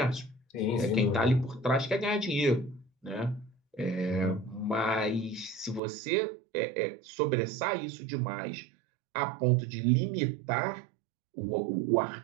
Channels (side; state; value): left; drops out; at 5.8 s